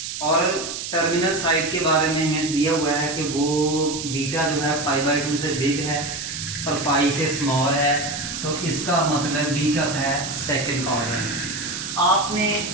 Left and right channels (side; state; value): right; noise; hiss, 6 dB below the sound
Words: और टर्मिनल साइड के बारे में हिंट्स दिया हुआ है कि वो बीटा जो है π/2 से बिग है और पाई से स्मॉल है, तो इसका मतलब भी क्या होता है सेकंड क्वाड्रेंट। आपने